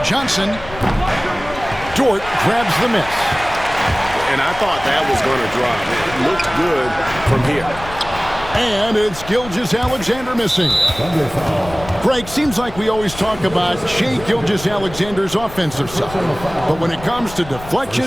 Johnson. Dort grabs the miss. And I thought that was going to drop. It looked good from here. And it's Gilgeous-Alexander missing. Greg, seems like we always talk about Shai Gilgeous-Alexander's offensive side. But when it comes to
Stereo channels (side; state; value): left; noise; rumble, 14 dB below the sound